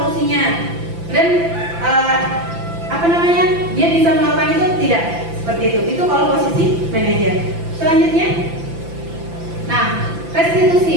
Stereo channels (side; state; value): left; late; 5.9 ms